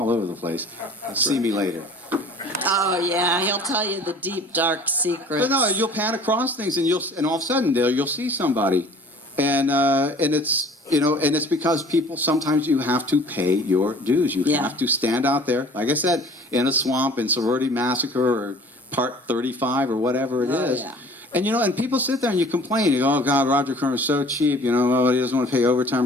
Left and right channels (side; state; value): both; normal; correlation 0.48